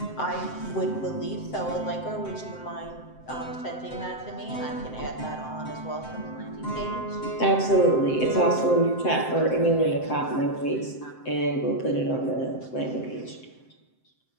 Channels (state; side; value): late; right; 7.7 ms